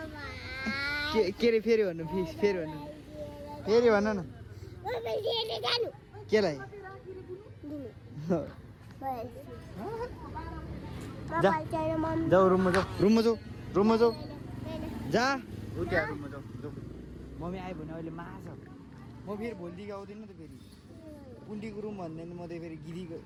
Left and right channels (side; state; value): both; identical; correlation 1.00